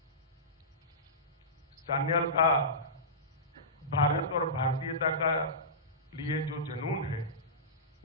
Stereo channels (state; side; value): normal; both; correlation -0.19